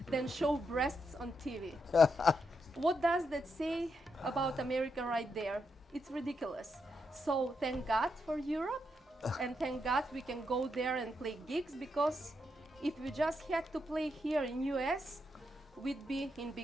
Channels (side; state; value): both; normal; correlation 0.82